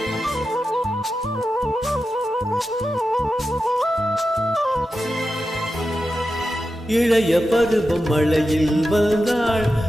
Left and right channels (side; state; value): both; normal; correlation 0.91